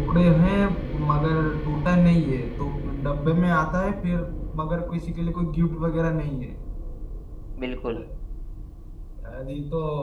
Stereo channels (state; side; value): identical; both; correlation 1.00